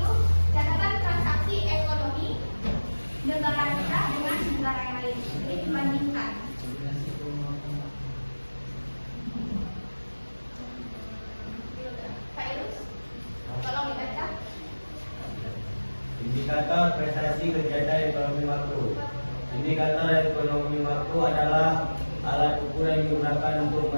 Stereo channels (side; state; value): both; inverted; correlation -1.00